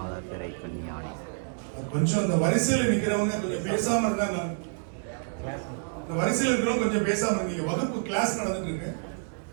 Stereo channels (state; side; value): silent; left; digital silence